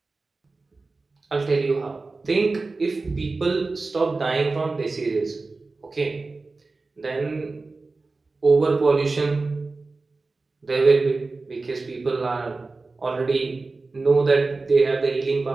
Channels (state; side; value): quieter; left; 3.7 dB